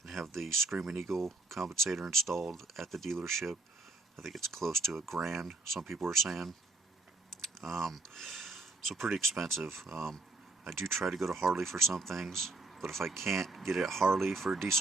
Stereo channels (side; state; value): left; quieter; 3.2 dB